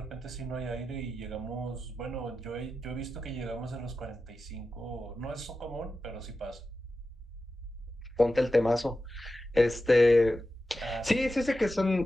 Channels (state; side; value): normal; both; correlation 0.92